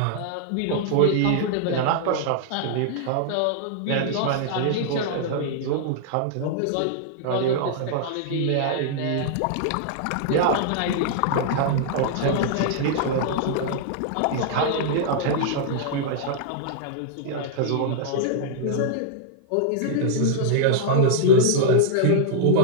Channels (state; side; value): different; both; correlation -0.01